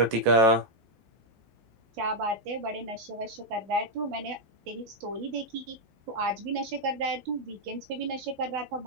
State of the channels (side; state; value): left; late; 15 ms